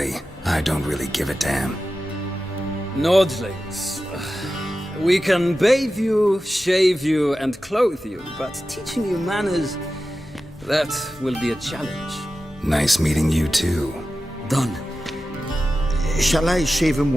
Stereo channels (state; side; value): normal; both; correlation 0.93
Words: I don't really give a damn. Nordlings. We can bathe you, shave you, and clothe you, but teaching you manners, that will be a challenge. Nice meeting you too. Done. Shall I shave him